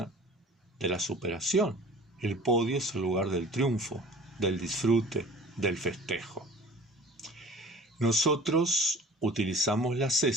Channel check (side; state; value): both; normal; correlation 0.45